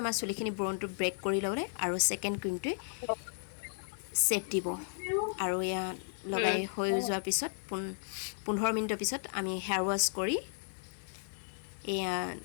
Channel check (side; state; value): right; silent; 55 dB below the other